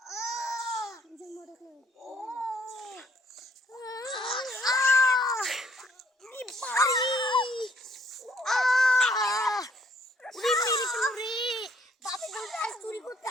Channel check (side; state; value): both; normal; correlation 0.64